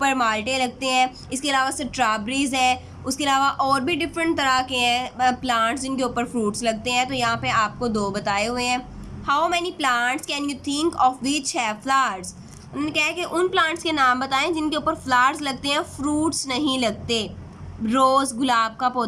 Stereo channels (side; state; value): both; identical; correlation 1.00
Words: माल्टे लगते हैं। इसके अलावा स्ट्रॉबेरीज है, उसके अलावा और भी डिफरेंट तरह के हैं प्लांट्स जिनके ऊपर फ्रूट्स लगते हैं। तो यहाँ पे आपको 2 बताए हुए हैं। How many plants can you think of which have flowers. उन्होंने कहा है कि उन प्लांट्स के नाम बताएं जिनके ऊपर फ्लावर्स लगते हैं, फ्रूट्स नहीं लगते। रोज़, गुलाब का